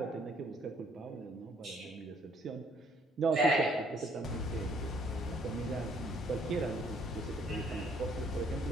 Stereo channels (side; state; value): both; normal; correlation 0.64